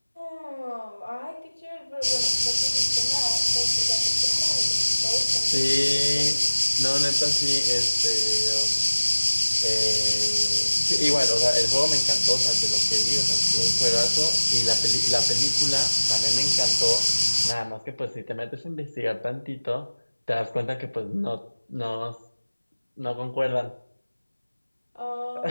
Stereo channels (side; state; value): both; inverted; correlation -1.00